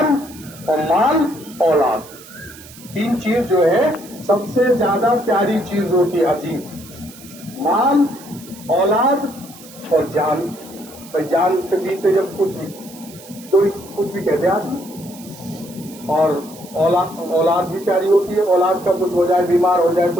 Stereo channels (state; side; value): noise; right; hiss, 19 dB below the sound